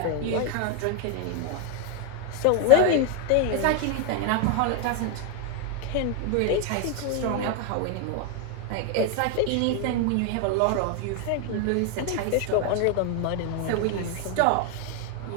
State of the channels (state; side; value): different; both; correlation 0.00